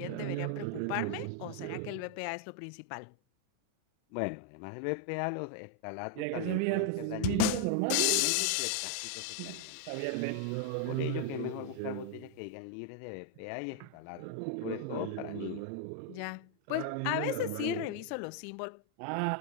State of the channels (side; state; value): both; different; correlation 0.00